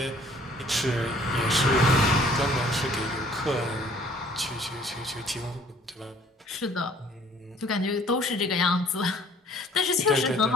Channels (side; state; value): both; normal; correlation 0.56